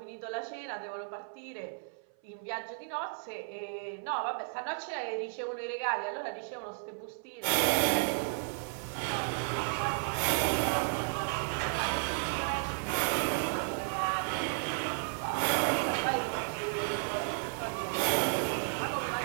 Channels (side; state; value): left; silent; 55 dB below the other